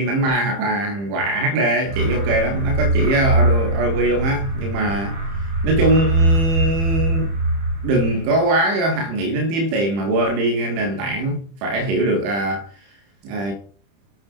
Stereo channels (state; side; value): late; left; 30 ms